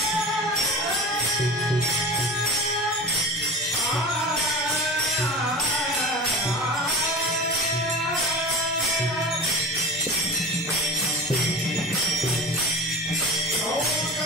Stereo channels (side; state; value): both; normal; correlation 0.34